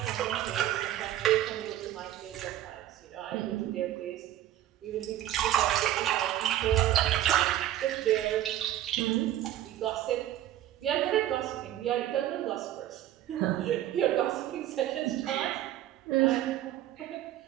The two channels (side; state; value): left; quieter; 12.8 dB